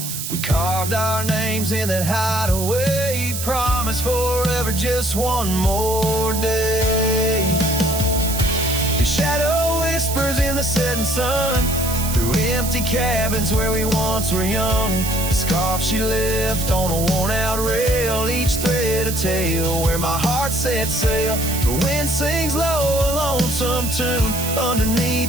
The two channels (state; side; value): noise; right; hiss, 5 dB below the sound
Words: We carved our names in that hideaway, promised forever just one more day. The shadow whispers in the setting sun, through empty cabins where we once were young. The scarf she left on a worn-out rail, each thread a tale where my heart set sail. The wind sings low a lonesome tune